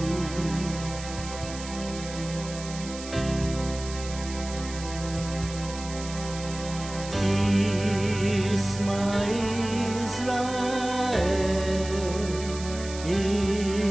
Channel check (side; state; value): right; noise; hiss, 12 dB below the sound